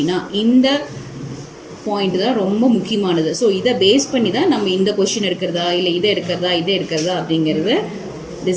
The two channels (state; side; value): identical; both; correlation 1.00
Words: இந்த பாயிண்ட் தான் ரொம்ப முக்கியமானது. ஸோ இதை பேஸ் பண்ணி தான் நம்ம இந்த கொஷின் எடுக்கிறதா இல்லை இதை எடுக்கிறதா அப்படிங்கிறத